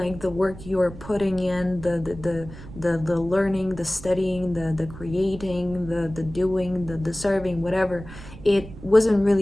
the work you're putting in, the learning, the studying, the creating, the doing, the serving, whatever, it wasn't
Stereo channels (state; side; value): noise; right; rumble, 15 dB below the sound